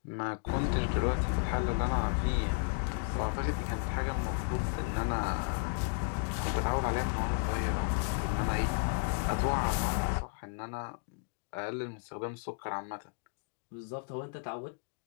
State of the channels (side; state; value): right; silent; 55 dB below the other